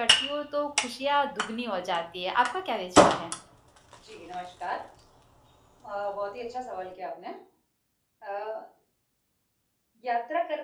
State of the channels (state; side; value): identical; both; correlation 1.00